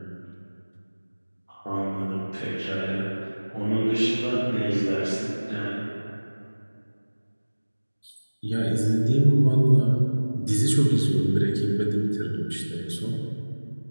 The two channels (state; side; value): inverted; both; correlation -1.00